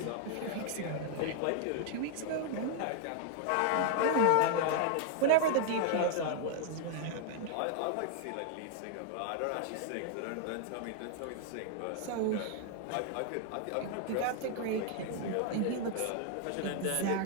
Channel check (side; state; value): both; different; correlation 0.00